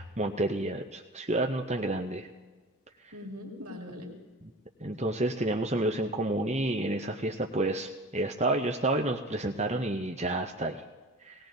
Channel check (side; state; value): both; normal; correlation 0.39